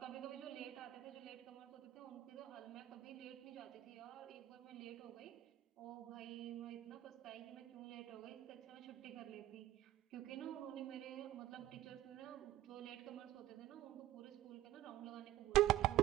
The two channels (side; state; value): left; quieter; 15.0 dB